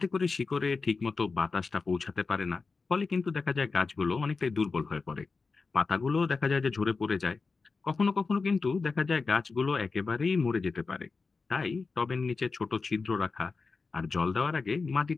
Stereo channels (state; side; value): quieter; right; 4.4 dB